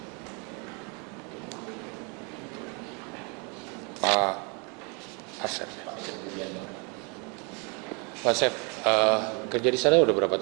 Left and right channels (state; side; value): quieter; left; 33.3 dB